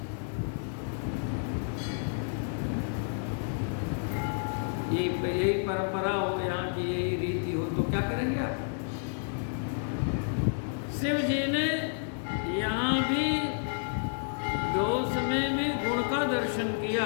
परंपरा हो, यहाँ की यही रीति हो, तो क्या करेंगे आप? शिव जी ने यहाँ भी दोष में भी गुण का दर्शन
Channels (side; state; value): right; silent; digital silence